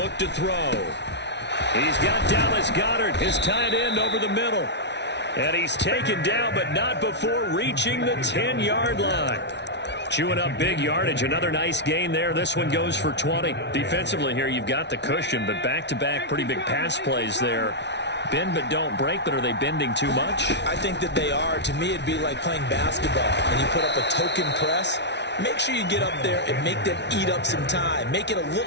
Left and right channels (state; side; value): late; right; 0.50 ms